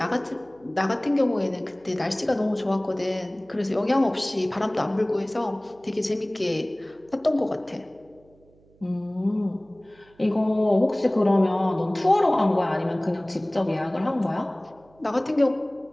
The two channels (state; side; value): noise; right; hum, 30 dB below the sound